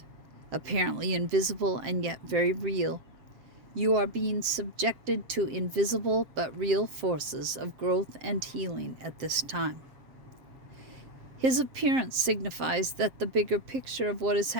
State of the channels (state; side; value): late; left; 7.6 ms